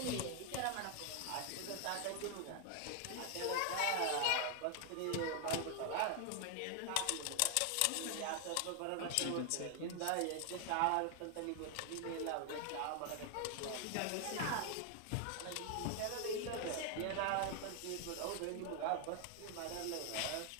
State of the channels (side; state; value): both; different; correlation 0.00